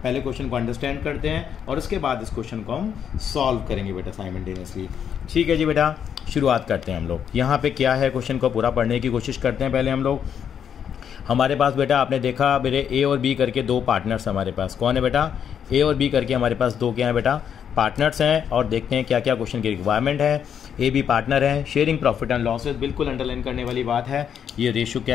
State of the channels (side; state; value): right; quieter; 8.3 dB